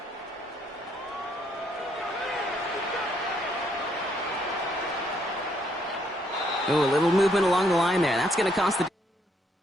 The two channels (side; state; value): both; normal; correlation 0.71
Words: Oh, a little movement along the line there. That's going to cost the...